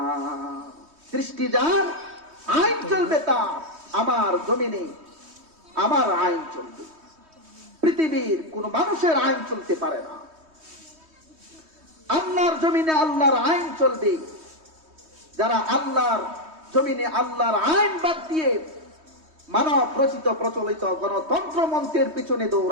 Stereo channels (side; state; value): left; late; 3.2 ms